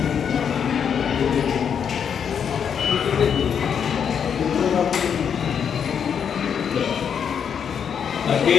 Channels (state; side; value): quieter; right; 7.6 dB